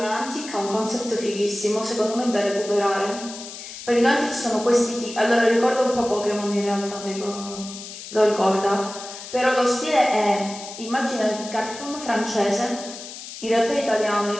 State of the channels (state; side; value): noise; left; hiss, 12 dB below the sound